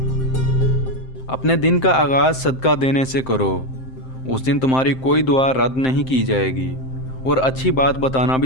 अपने दिन का आगाज़ सदका देने से करो, उस दिन तुम्हारी कोई दुआ रद्द नहीं की जाएगी, और अच्छी बात बताना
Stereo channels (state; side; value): late; right; 7.7 ms